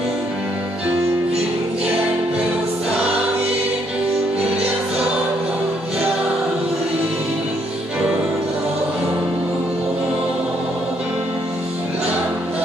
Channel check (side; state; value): both; normal; correlation 0.71